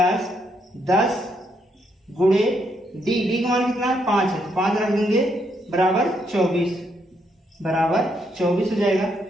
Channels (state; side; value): normal; both; correlation 0.75